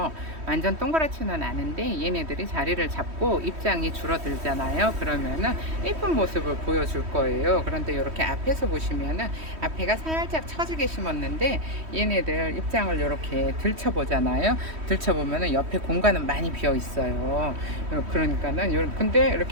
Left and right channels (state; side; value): late; left; 3.1 ms